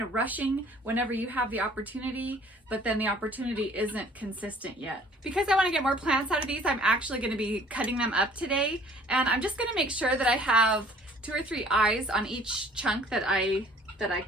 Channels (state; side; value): normal; both; correlation 0.54